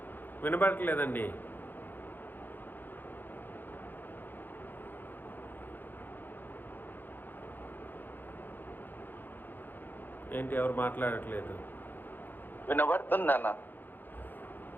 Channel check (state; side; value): late; right; 0.090 ms